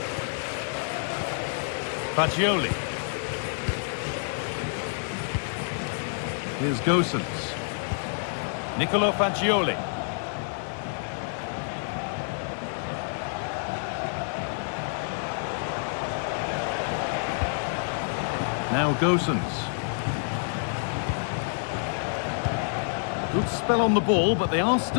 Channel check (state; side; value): silent; right; digital silence